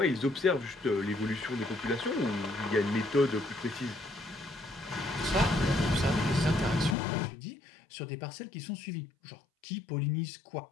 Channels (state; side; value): drops out; right; at 7.0 s